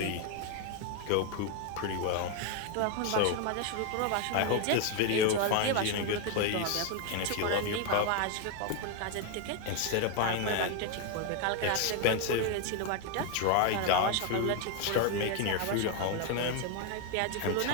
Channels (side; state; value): both; different; correlation 0.01